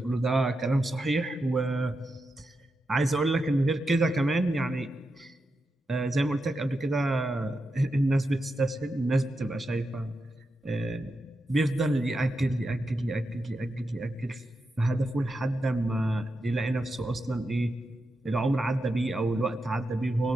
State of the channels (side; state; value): both; normal; correlation 0.87